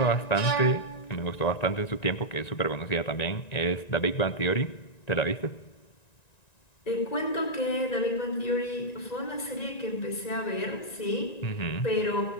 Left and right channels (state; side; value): late; right; 1.9 ms